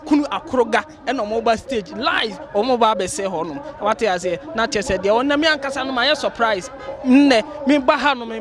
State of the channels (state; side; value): identical; both; correlation 1.00